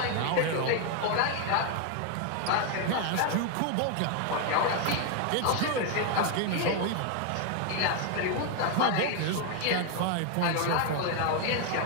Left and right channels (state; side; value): different; both; correlation 0.01